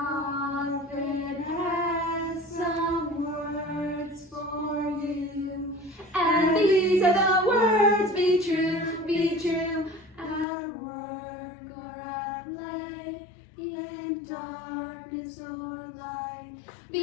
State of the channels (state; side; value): drops out; right; at 10.5 s